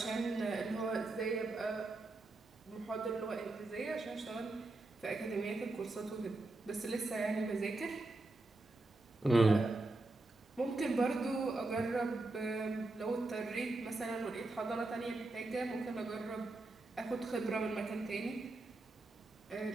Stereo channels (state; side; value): quieter; left; 3.0 dB